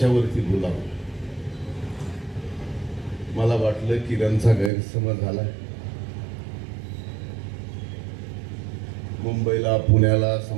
बोलावं. मला वाटलं किरणचा गैरसमज झाला. मुंबईला, पुण्याला,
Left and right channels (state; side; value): drops out; left; at 4.7 s